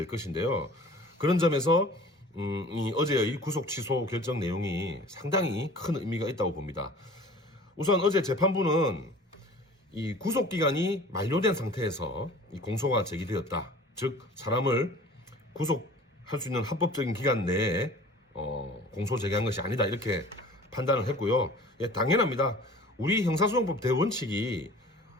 것인데요. 그런 점에서 이 어제의 구속 취소 결정 내용이 상당히 큰 의미가 있다고 봅니다. 우선 어제 재판부는 이 구속 기간이 만료된 상태에서 이 공소가 제기되었다. 즉 사람을 구속할 수 있는 합법적인 기간 내에 공소 제기한 것이 아니다 이렇게 판단을 했고요. 당연합니다. 우리 형사소송법 대원칙이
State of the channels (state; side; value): normal; both; correlation 0.45